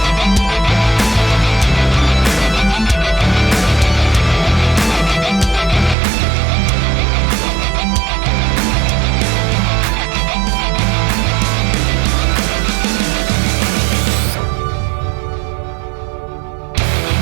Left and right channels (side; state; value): left; drops out; at 6.0 s